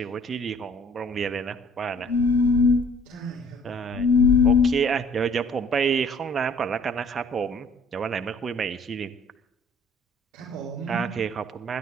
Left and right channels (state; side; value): normal; both; correlation 0.55